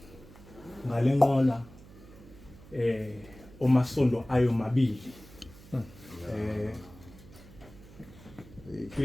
ngalenqola omasondo ayo mabili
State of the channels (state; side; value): noise; right; hum, 20 dB below the sound